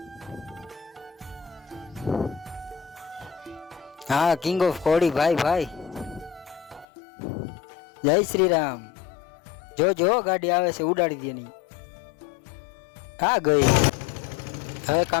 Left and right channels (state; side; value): drops out; right; at 6.9 s